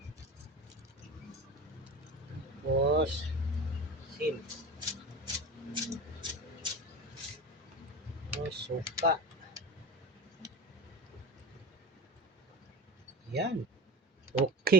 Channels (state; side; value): normal; both; correlation 0.31